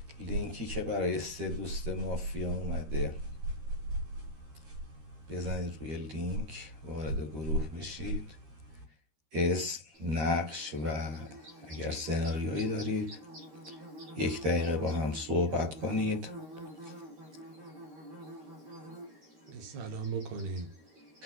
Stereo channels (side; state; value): left; late; 13 ms